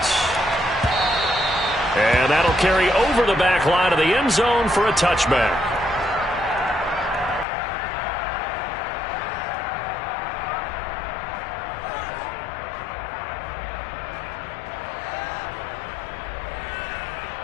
And that'll carry over the back line of the end zone for a touchback.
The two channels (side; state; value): right; drops out; at 7.5 s